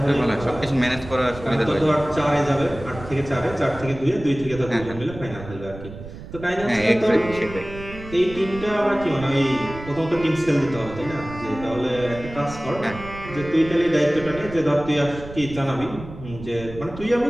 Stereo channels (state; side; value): noise; right; rumble, 13 dB below the sound